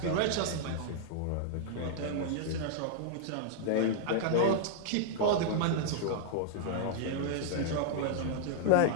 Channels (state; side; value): different; both; correlation -0.01